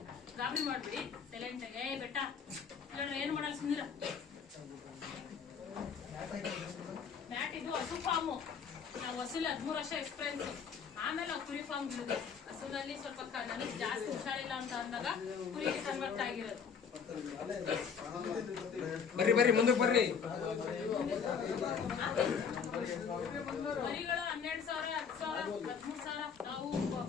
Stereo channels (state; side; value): quieter; right; 6.6 dB